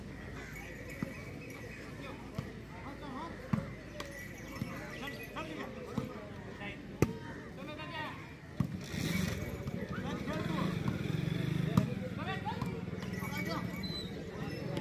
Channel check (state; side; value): identical; both; correlation 1.00